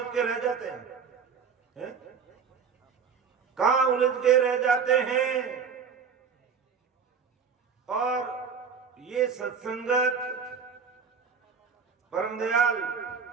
के रह जाते हैं, कहाँ उलझ के रह जाते हैं। और ये सत्संगत परम दयाल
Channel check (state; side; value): quieter; left; 6.2 dB